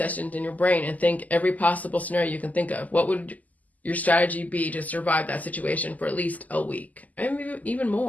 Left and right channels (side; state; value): right; late; 0.078 ms